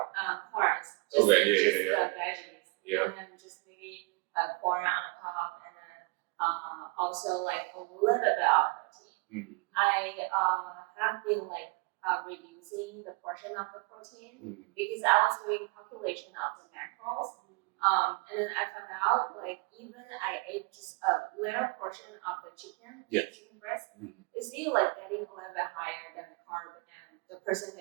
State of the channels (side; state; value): left; quieter; 29.2 dB